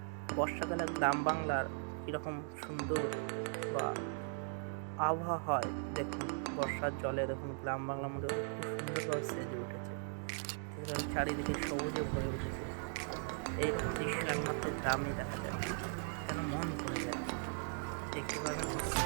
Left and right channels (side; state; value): left; silent; 52 dB below the other